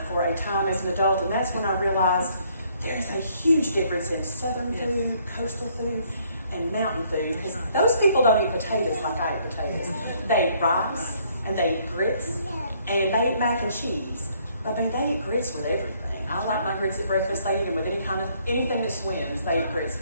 for a time as an adult, and that's when I realized there's a huge difference in southern food, coastal food, and mountain food, because those people don't eat potatoes like I eat potatoes. They eat rice, and they eat grits, and they eat mac and cheese. I mean, they eat grits with everything. I like my grits at breakfast. They eat them with anything that swims, they eat grits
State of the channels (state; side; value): inverted; both; correlation -0.66